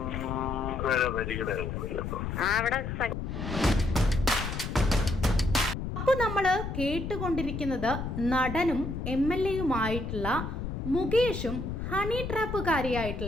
അവിടെ. അപ്പോൾ നമ്മൾ കേട്ടുകൊണ്ടിരിക്കുന്നത് നടനും MLA-യുമായിട്ടുള്ള മുകേഷും ഹണി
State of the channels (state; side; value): noise; left; rumble, 5 dB below the sound